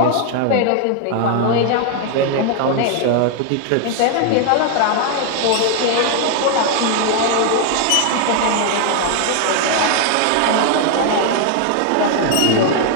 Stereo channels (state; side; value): different; both; correlation 0.00